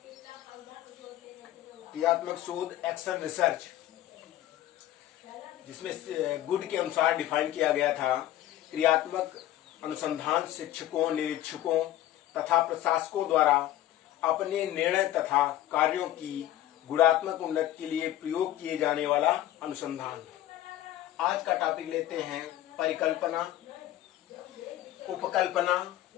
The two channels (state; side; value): quieter; right; 13.6 dB